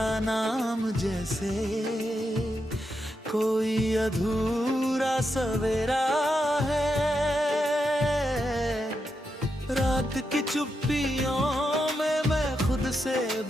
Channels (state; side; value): normal; both; correlation 0.85